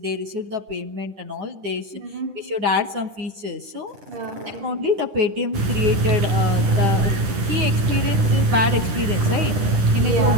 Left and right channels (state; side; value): late; left; 10 ms